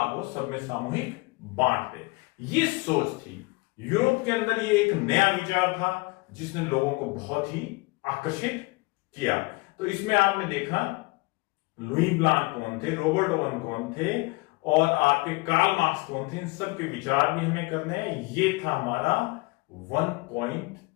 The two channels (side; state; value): right; quieter; 25.7 dB